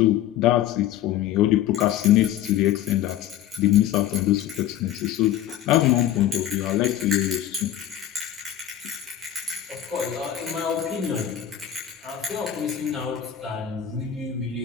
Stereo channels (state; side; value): quieter; right; 11.2 dB